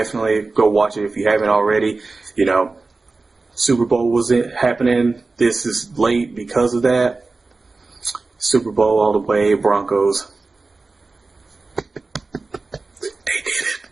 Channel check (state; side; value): quieter; left; 3.7 dB